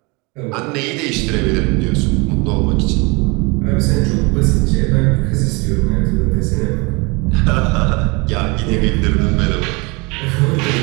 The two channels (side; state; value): left; quieter; 27.8 dB